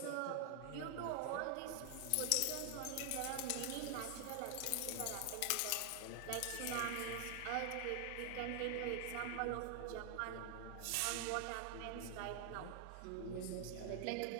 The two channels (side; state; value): both; different; correlation 0.00